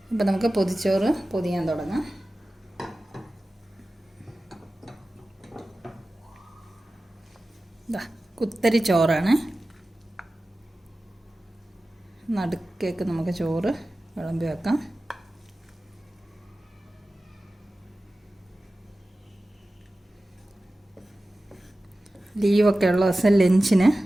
അപ്പോൾ നമുക്ക് പൊതിച്ചോറ് പൊതിയാൻ തുടങ്ങാം. കുത്തരി ചോറാണ്. നടുക്കേക്ക് നമുക്ക് ചോറ് വിളമ്പി വെക്കാം. ലീവൊക്കെ ഉള്ള ദിവസം ലഞ്ചിന്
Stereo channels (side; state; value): both; normal; correlation 0.95